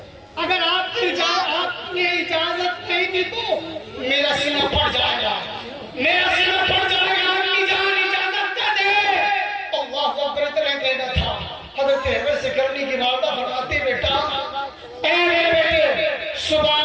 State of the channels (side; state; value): both; identical; correlation 1.00